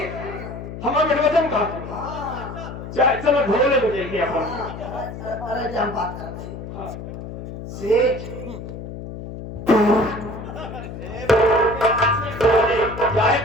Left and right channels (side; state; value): left; noise; hum, 10 dB below the sound